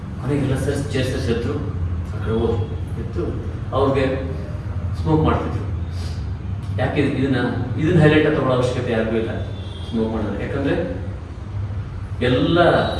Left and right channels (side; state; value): both; identical; correlation 1.00